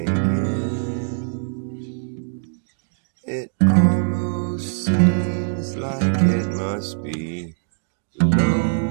get. It almost seems like it must be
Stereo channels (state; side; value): silent; left; digital silence